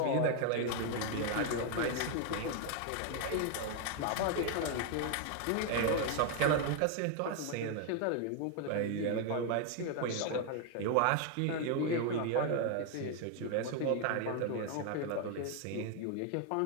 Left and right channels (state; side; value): different; both; correlation 0.01